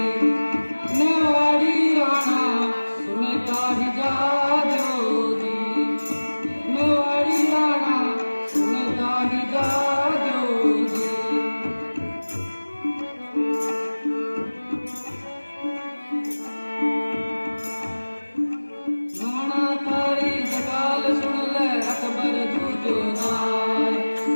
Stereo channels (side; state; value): both; inverted; correlation -1.00